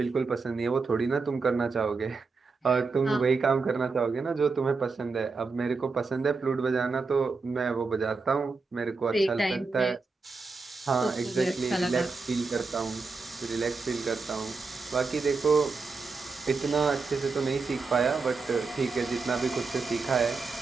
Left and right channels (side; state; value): left; quieter; 4.3 dB